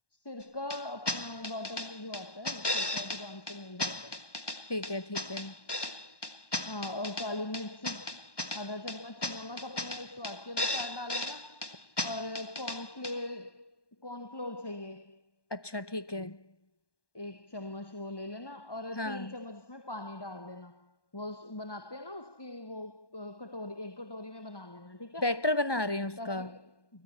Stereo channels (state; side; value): late; right; 1.2 ms